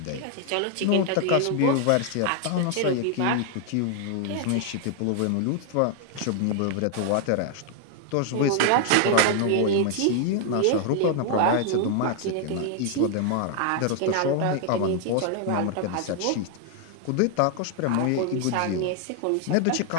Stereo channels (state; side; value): different; both; correlation 0.00